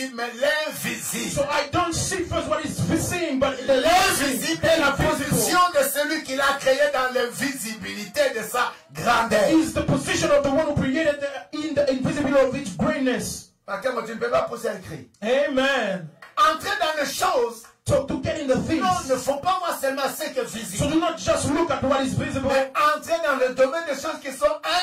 mais l'invisible. So I don't see first what is seen, but the L'invisible est la invisible position de celui qui l'a créé dans l'invisibilité de sa grandeur. is the position of the one who created in the invisibility of its greatness. Parce que tu ne peux pas pousser un cri. Amen. Entrer dans les choses. So to get in the things. Non, ne faut pas voir seulement ce qui est So visible. do not just look at what is visible. Mais entrer dans le domaine des choses qui sont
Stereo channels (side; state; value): both; identical; correlation 1.00